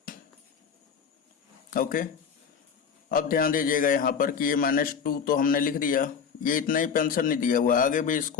ओके, अब ध्यान दीजिएगा यहाँ पर कि ये -2 तो हमने लिख दिया, ये इतना ही पेंशन नहीं दिया हुआ, आगे भी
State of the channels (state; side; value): quieter; right; 6.7 dB